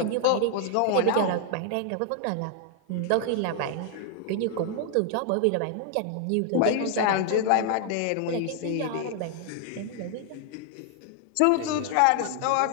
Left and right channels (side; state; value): both; different; correlation 0.00